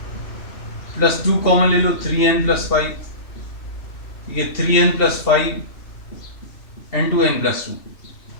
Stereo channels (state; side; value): late; right; 2.7 ms